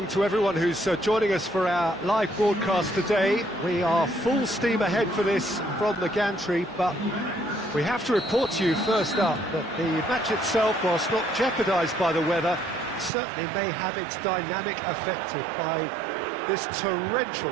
to everyone who's joining us for our live broadcast today. We are full steam ahead for this from the gantry, but we have to report to you first up that the match itself, whilst not jeopardised by the weather, certainly may have its dynamic affected by this torrential...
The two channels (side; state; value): left; drops out; at 13.1 s